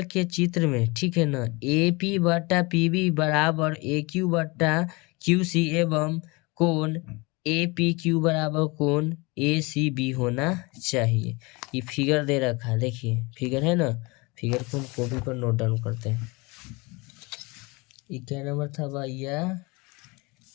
के चित्र में, ठीक है ना, ए पी बटा पी बी बराबर ए क्यू बटा क्यू सी एवं कोण ए पी क्यू बराबर कोण ए सी बी होना चाहिए। ये फिगर दे रखा है, देखिए फिगर है ना, फिगर को हम कॉपी पर नोट डाउन करते हैं। ये क्या नंबर था भैया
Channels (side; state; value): right; quieter; 26.0 dB